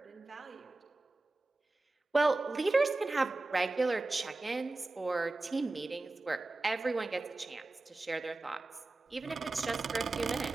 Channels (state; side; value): quieter; left; 3.2 dB